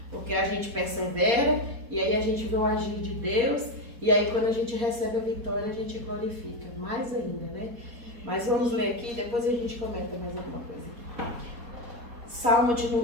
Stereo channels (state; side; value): late; left; 4.2 ms